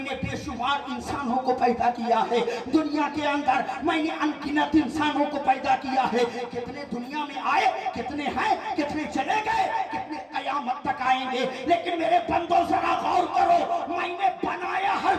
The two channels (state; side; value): identical; both; correlation 1.00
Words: बेशुमार इंसानों को पैदा किया है। दुनिया के अंदर मैंने अनगिनत इंसानों को पैदा किया है। कितने दुनिया में आए, कितने हैं, कितने चले गए, कितने कयामत तक आएंगे। लेकिन मेरे बंदों जरा गौर करो, मैंने बनाया